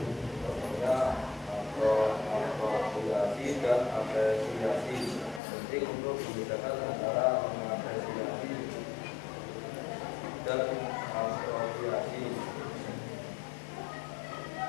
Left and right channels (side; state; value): right; drops out; at 5.4 s